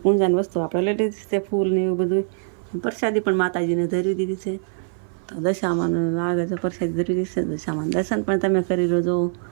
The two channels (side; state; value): left; silent; 59 dB below the other